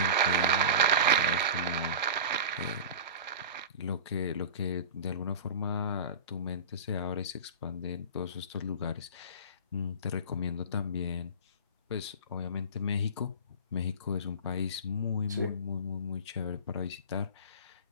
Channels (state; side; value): inverted; both; correlation -0.32